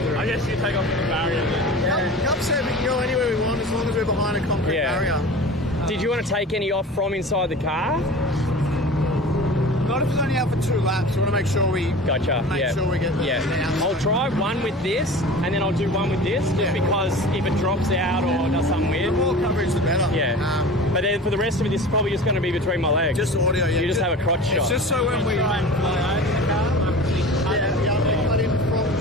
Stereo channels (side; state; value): both; normal; correlation 0.37